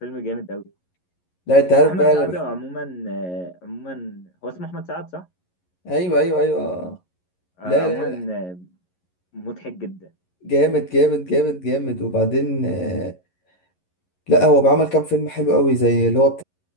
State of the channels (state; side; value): late; right; 11 ms